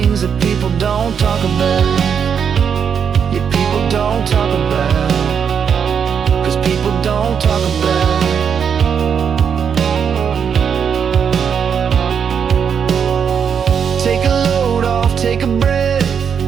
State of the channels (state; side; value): quieter; left; 7.2 dB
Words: that people don't talk about. Yeah, people don't talk about. People don't talk about. Take a load off, take a breath.